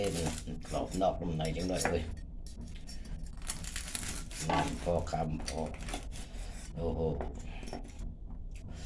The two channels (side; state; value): both; identical; correlation 1.00